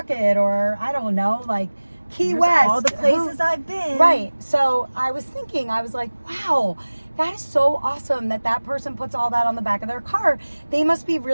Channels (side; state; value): both; inverted; correlation -1.00